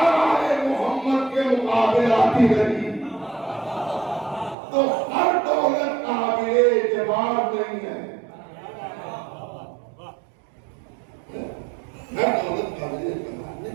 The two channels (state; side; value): drops out; left; at 4.5 s